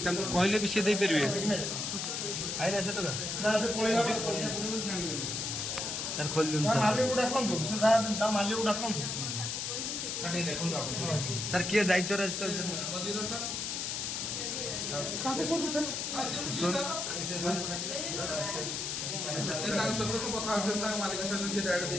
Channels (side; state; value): left; noise; hiss, 2 dB below the sound